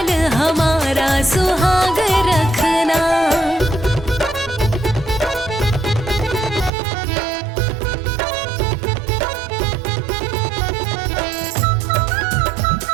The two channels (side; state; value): left; drops out; at 6.7 s